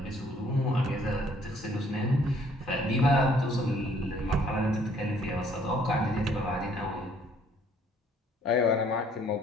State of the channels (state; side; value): normal; both; correlation 0.61